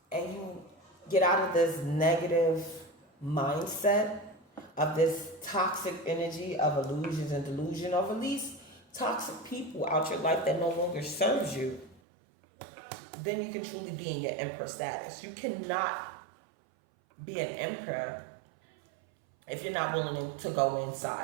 and you get out of this negative mindset of this toxic energy of illusions and delusion, or release toxic people out your life that no longer serves you, then you can truly be in your emperor status. You cannot be an emperor if you're not willing to go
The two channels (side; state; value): left; drops out; at 12.0 s